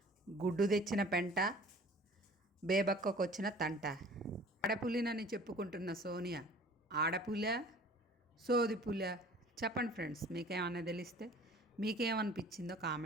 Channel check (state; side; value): normal; both; correlation 0.48